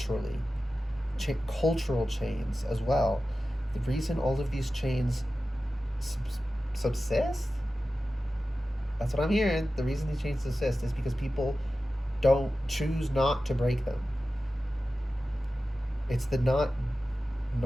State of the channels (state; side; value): normal; both; correlation 0.94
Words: Cultural chains as well. The reason all of these chains subsist, that's what I'm hearing. The reason these chains subsist is because people don't choose not to break them. It's the not